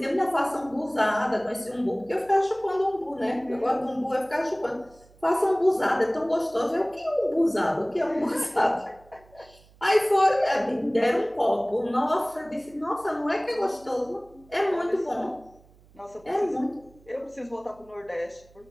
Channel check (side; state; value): right; noise; hum, 27 dB below the sound